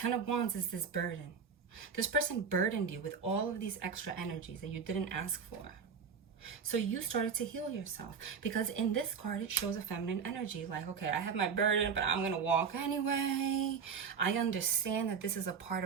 of Wands is this burden. This person burdened you with all of these extra energies that you didn't ask for. So you started to heal yourself, because in this card, it shows a feminine energy. Like, okay, I have my burden, but I'm going to walk anyway. I understand that this is a part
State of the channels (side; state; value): left; quieter; 6.3 dB